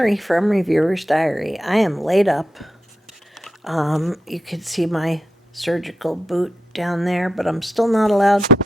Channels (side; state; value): both; normal; correlation 0.85